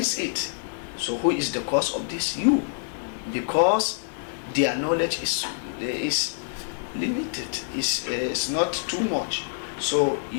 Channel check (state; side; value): silent; right; digital silence